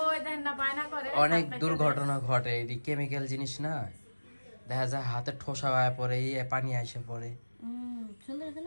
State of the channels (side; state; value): both; inverted; correlation -1.00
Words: ওই দেখেন না বায়না করে। অনেক দুর্ঘটনা ঘটে, এটি কেমিক্যাল জিনিস না, দেখা যায় হাতে ঠোসা হয়ে পড়ে, পানি আসে পড়ে। সুন্দর আছে